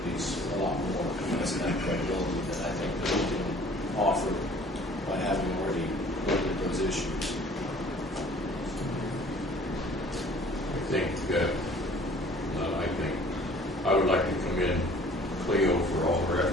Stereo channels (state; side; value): normal; both; correlation 0.52